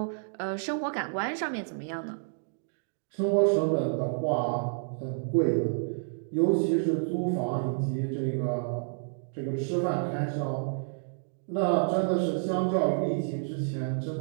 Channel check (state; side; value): silent; left; digital silence